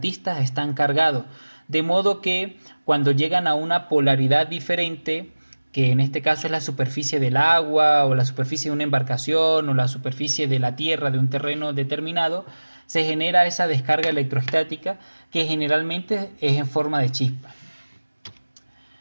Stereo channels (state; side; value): inverted; both; correlation -1.00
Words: están cargados. De modo que cuando llegan a una polaridad diferente, que en este caso es la superficie del agua o la superficie de una embarcación o la superficie de la tierra de un terreno determinado, se genera esa descarga electrostática que generalmente es en forma de chispa.